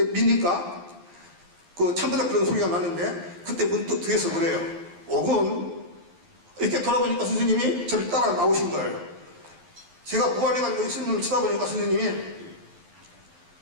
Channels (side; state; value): left; late; 12 ms